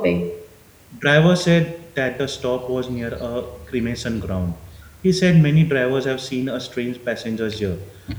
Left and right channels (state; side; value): identical; both; correlation 1.00